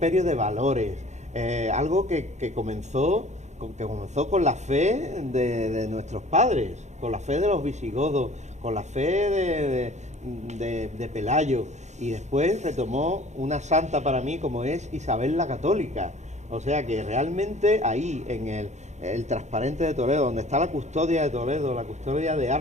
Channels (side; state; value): left; late; 0.33 ms